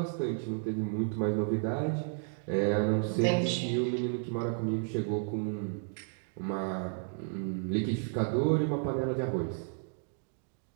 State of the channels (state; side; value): silent; left; digital silence